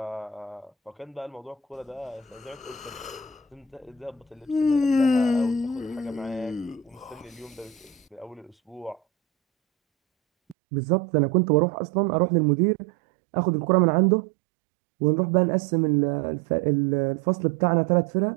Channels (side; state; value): left; drops out; at 10.6 s